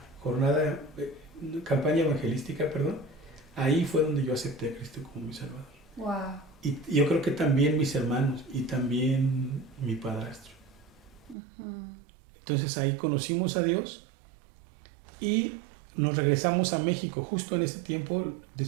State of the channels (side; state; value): left; drops out; at 11.4 s